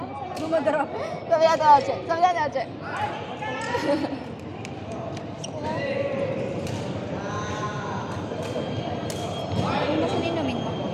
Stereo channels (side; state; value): both; identical; correlation 1.00